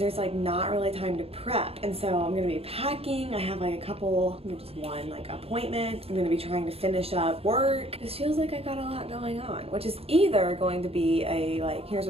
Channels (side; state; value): left; late; 0.29 ms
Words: there's like not really time to prep. And so I'm gonna be packing. I have like a couple, just one like appointment. I'm gonna be trying to finish up work. This feels like I got a lot going on, which is either going to be a like, here's